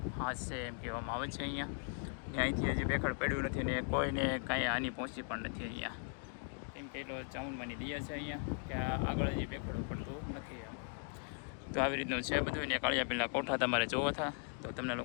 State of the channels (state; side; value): silent; right; 52 dB below the other